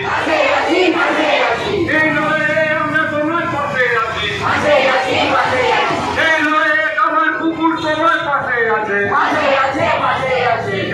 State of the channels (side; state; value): both; identical; correlation 1.00